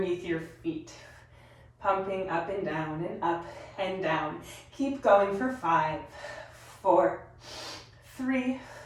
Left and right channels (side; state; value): both; identical; correlation 1.00